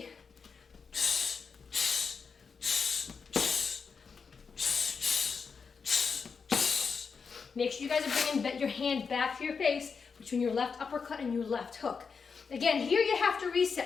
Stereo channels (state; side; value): quieter; right; 5.5 dB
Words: Make sure you guys are bringing your hand back to your face between your left uppercut and your left hook. Again, here you have to